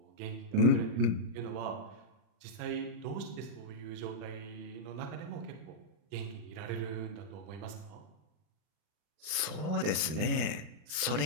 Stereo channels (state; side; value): late; left; 39 ms